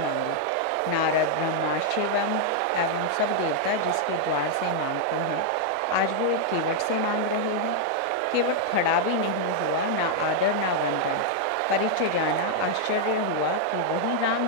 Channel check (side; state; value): both; different; correlation -0.01